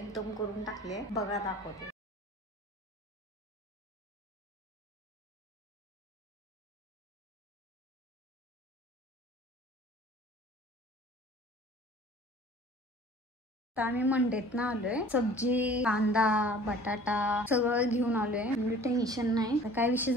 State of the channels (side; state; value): both; normal; correlation 0.48